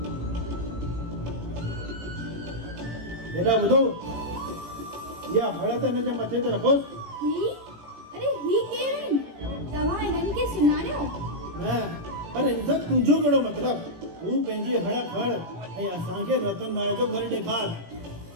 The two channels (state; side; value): late; left; 18 ms